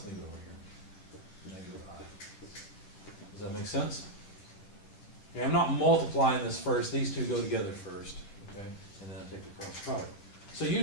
leave it over here. Negative I. Does that make sense? Okay, I'm not multiplying this first. These two go together first, okay? And then I take the cross product. So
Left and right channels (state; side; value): late; right; 10 ms